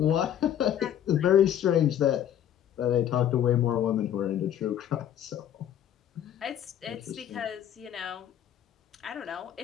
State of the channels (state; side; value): quieter; right; 10.3 dB